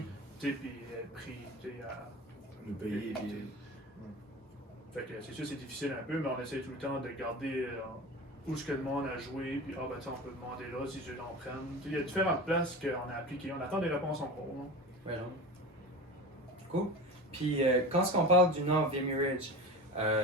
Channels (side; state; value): both; normal; correlation 0.31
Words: sais, puis être pris, tu sais, à. Nous payer. Puis... Fait que c'est sûr c'est difficile un peu, mais on essaie tout le temps de garder où est-ce que le monde a joué, puis ben on peut demander là si eux en prennent. Il y a différentes places qu'on a appliquées, on attend des réponses en cours. Ouais, non. Cool. Puis quand on parle du nom Vimy Ridge,